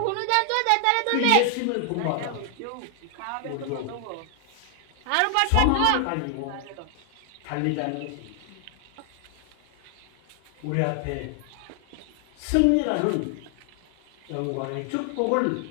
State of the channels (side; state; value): both; different; correlation 0.00